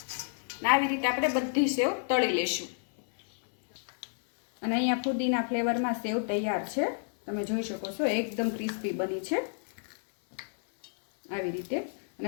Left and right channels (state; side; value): silent; right; 58 dB below the other